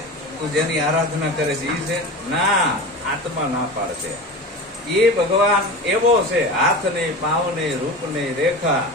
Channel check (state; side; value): normal; both; correlation 0.30